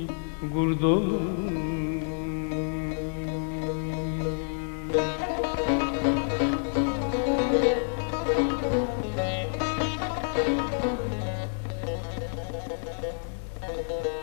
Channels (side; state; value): right; silent; digital silence